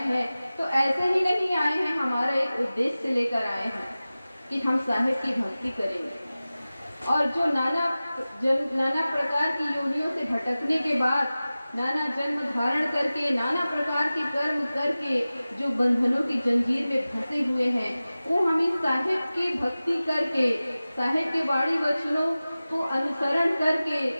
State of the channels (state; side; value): inverted; both; correlation -0.97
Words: हैं, तो ऐसे ही नहीं आए हैं, हमारा एक उद्देश्य लेकर आए हैं कि हम साहिब की भक्ति करेंगे। और जो नाना प्रकार की योनियों से भटकने के बाद, नाना जन्म धारण करके, नाना प्रकार के कर्म करके जो बंधनों की जंजीर में फंसे हुए हैं, वो हम इस साहिब की भक्ति करके, साहिब के वाणी वचनों को अनुसरण करके,